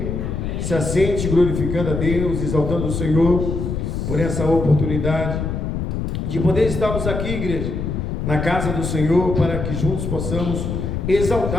Se assente glorificando a Deus, exaltando o Senhor por essa oportunidade de poder estarmos aqui, igreja, na casa do Senhor, para que juntos possamos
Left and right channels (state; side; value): noise; left; rumble, 3 dB below the sound